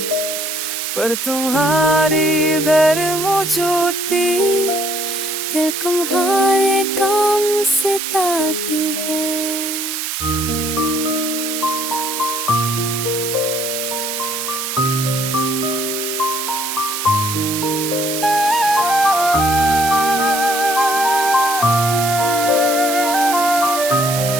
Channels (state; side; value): noise; right; hiss, 4 dB below the sound